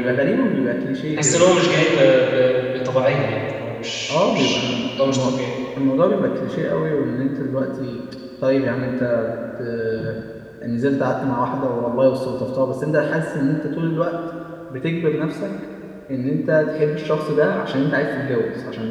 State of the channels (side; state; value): both; identical; correlation 1.00